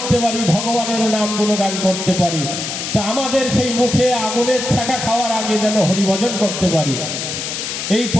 পারি, ভগবানের নাম গুণগান করতে পারি। তো আমাদের সেই মুখে আগুনের ছ্যাঁকা খাওয়ার আগে যেন হরিভজন করতে পারি। এই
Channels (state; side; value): noise; left; hiss, 5 dB below the sound